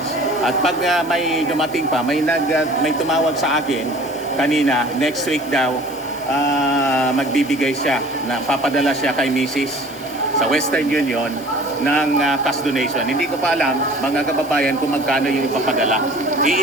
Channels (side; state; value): left; noise; hiss, 20 dB below the sound